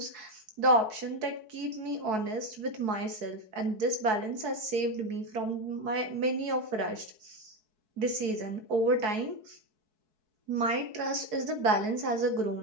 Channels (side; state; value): left; late; 4.6 ms